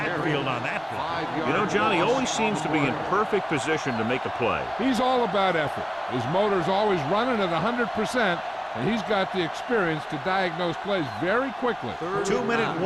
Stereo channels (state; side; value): identical; both; correlation 1.00